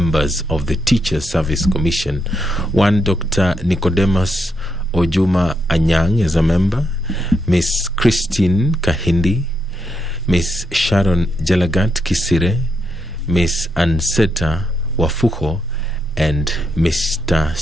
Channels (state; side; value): normal; both; correlation 0.81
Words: of the Teachers Service Commission. 1, Dr. Nicodemus Ojuma Anyang is a member, Miss Christine Kahindi, Miss Sharon Jalagat Kisire, Miss Anseta Wafuko, and Mr.